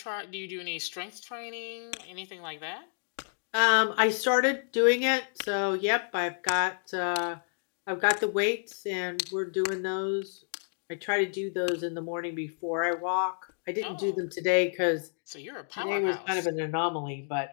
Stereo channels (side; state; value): right; silent; digital silence